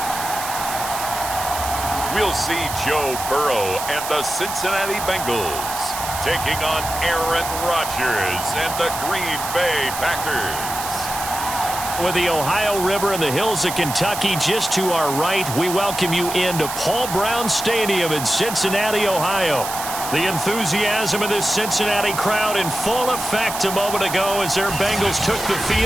We'll see Joe Burrow and the Cincinnati Bengals taking on Aaron Rodgers and the Green Bay Packers. With the Ohio River and the hills of Kentucky just to our right, we welcome you into Paul Brown Stadium in Cincinnati, Ohio. The enthusiasm of this Cincinnati crowd in full effect a moment ago as their Bengals took the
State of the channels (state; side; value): noise; right; hiss, 7 dB below the sound